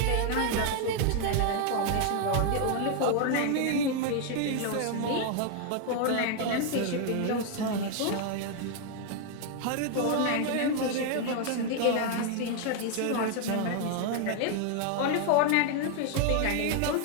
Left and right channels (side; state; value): both; different; correlation 0.00